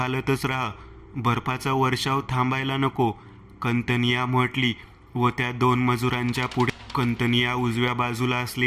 राहा. बर्फाचा वर्षाव थांबायला नको, कंतनिया म्हटली व त्या 2 मजुरांच्या पुढे कंतनिया उजव्या बाजूला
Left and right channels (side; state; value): both; identical; correlation 1.00